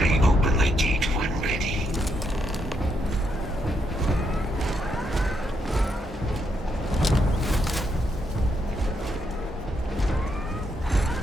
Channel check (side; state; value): both; normal; correlation 0.78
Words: open the gate when ready.